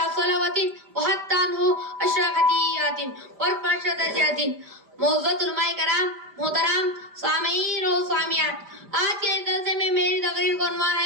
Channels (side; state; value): left; late; 5.0 ms